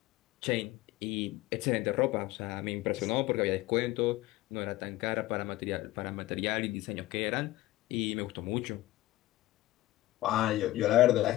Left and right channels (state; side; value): quieter; right; 17.0 dB